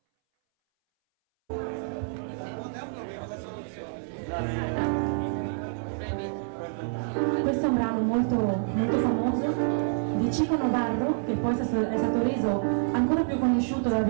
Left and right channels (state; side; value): silent; left; 60 dB below the other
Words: Questo è un brano molto famoso di Chico Novarro, che poi è stato reso ancora più conosciuto da